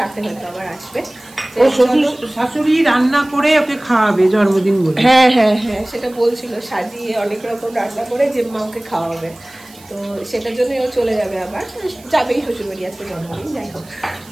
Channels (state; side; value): noise; right; hiss, 24 dB below the sound